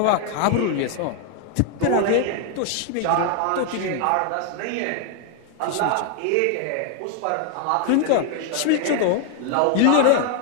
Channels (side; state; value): both; different; correlation 0.00